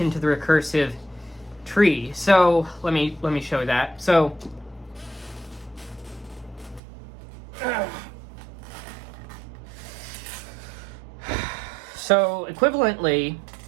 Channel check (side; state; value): left; drops out; at 6.8 s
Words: to the recursive tree. So let me show that. So equivalently,